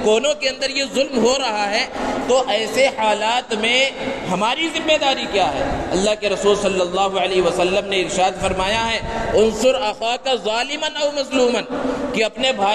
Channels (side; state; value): both; identical; correlation 1.00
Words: کونوں کے اندر یہ ظلم ہو رہا ہے۔ تو ایسے حالات میں ہماری ذمہ داری کیا ہے؟ اللہ کے رسول صلی اللہ علیہ وسلم نے ارشاد فرمایا ہے، انصر اخاک ظالما او مظلوما، کہ اپنے